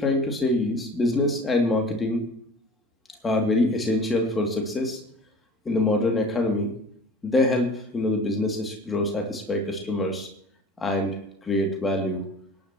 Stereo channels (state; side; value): normal; both; correlation 0.42